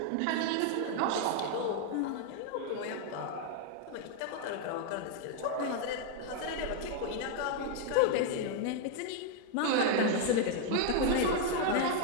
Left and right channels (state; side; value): different; both; correlation 0.00